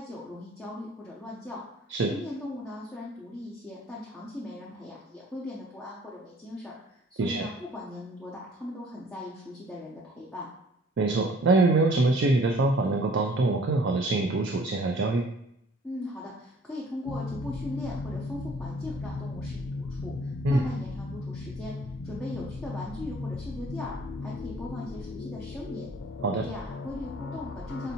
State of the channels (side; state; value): both; normal; correlation 0.55